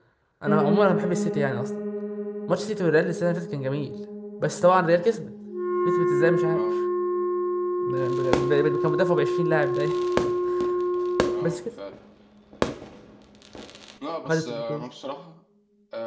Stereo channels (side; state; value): both; identical; correlation 1.00